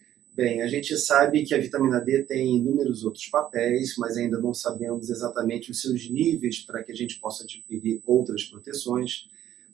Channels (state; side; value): quieter; left; 11.9 dB